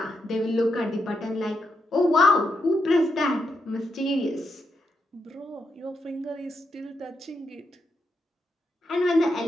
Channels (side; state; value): both; normal; correlation 0.82